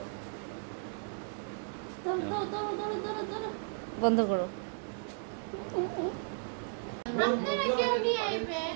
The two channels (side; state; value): left; silent; 55 dB below the other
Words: বন্ধ করো। আপনারা কেউ নিয়ে